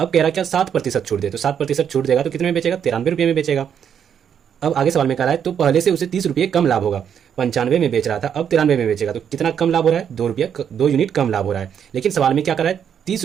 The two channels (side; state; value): left; quieter; 8.3 dB